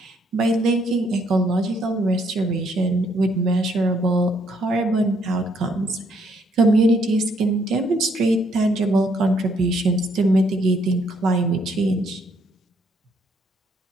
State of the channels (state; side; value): normal; both; correlation 0.70